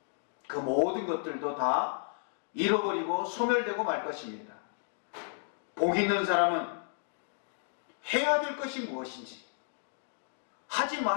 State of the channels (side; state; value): right; silent; digital silence